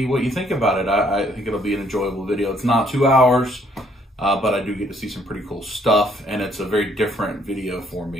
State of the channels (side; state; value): both; normal; correlation 0.67